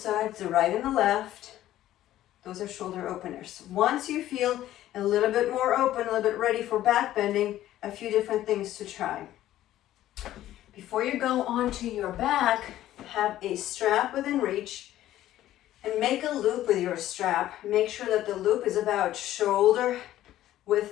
the right and the left. Those are shoulder openers. Once you feel a little bit more open, a little bit ready for back bending, a few different things to try. Before you go onto your back, have a strap within reach and make a loop with your strap. Make sure that the loop is about shoulder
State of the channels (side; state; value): right; quieter; 13.5 dB